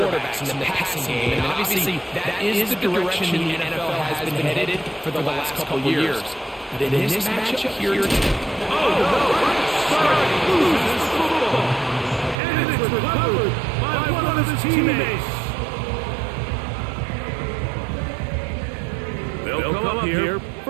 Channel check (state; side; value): drops out; left; at 12.4 s